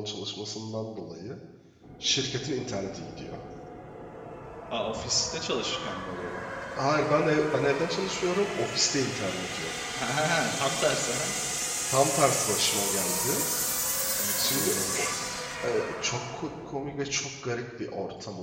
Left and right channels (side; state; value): both; identical; correlation 1.00